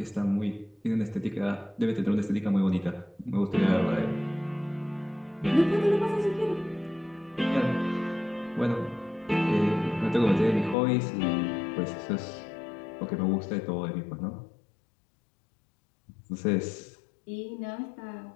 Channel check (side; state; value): right; drops out; at 10.8 s